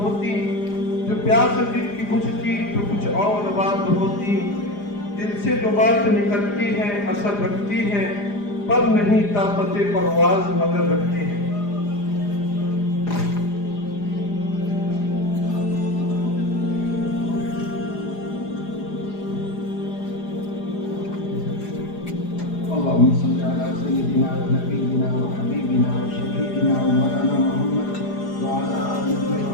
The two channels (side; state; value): right; late; 4.9 ms